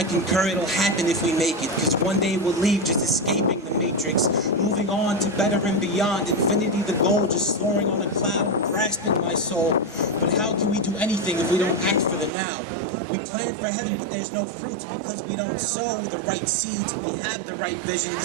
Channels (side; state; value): left; drops out; at 12.3 s